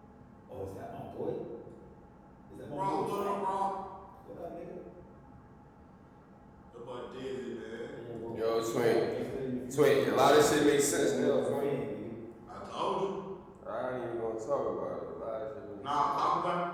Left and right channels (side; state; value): both; identical; correlation 1.00